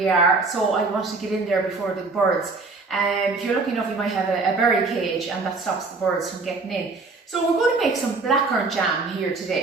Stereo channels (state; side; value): quieter; left; 3.9 dB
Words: are, so I wanted to get in there before the birds. If you're lucky enough, you might have a berry cage, and that stops the birds from getting in. So we're going to make some blackcurrant jam here